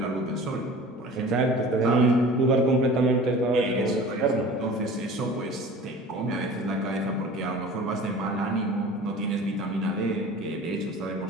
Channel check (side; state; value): both; normal; correlation 0.41